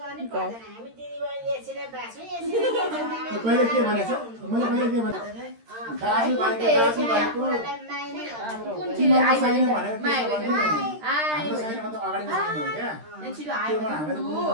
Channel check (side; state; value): left; late; 13 ms